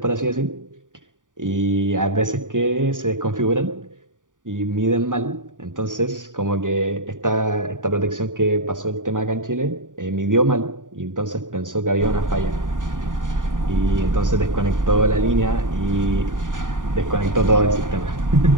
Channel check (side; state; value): left; late; 0.88 ms